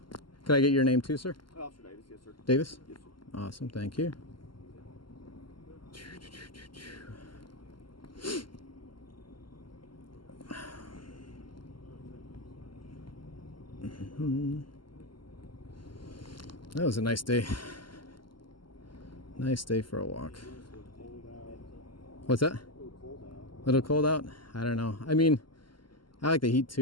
Could I get your name too, sir? Officer Davis, yes, sir. Davis? Yes, sir. Awesome. Thank you. That was a nice day. Nice day for a walk. What's that? A little cold out? I don't know. I mean, I like the heat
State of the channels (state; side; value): late; right; 0.72 ms